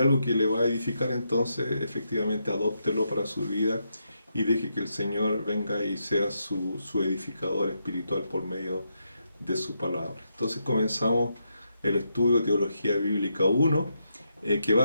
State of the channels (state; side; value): inverted; both; correlation -0.82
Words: que le va a edificar, entonces efectivamente adóptelo para su vida y deje que el Señor venga y sea su edificador espiritual por medio de su palabra. Entonces comenzamos el estudio de Teología Bíblica 1, que va